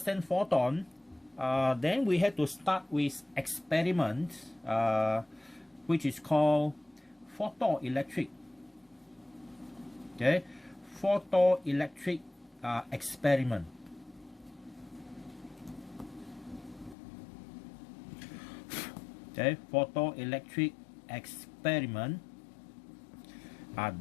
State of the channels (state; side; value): drops out; right; at 16.9 s